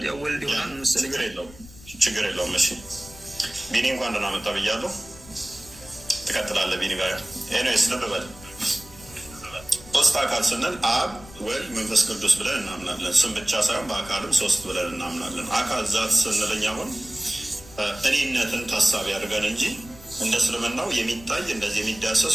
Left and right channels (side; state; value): left; noise; rumble, 20 dB below the sound